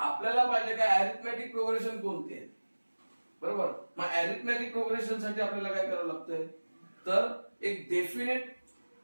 पाहिजे काय अरिथमेटिक प्रोग्रेशन कोणते आहे. बरोबर. मग अरिथमेटिक प्रोग्रेशन साठी आपल्याला काय करावं लागतंय तर एक definite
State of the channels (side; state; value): both; inverted; correlation -1.00